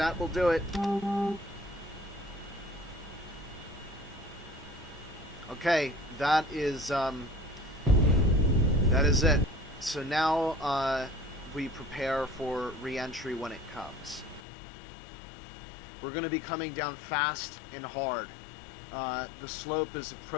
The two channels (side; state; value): right; drops out; at 14.4 s